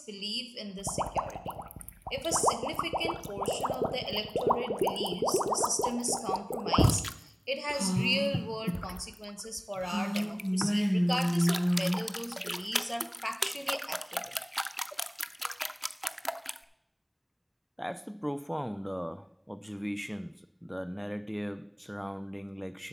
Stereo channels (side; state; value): both; identical; correlation 1.00